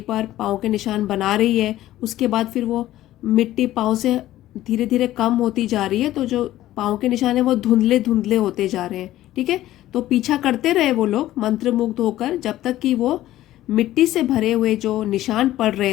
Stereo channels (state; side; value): quieter; right; 14.5 dB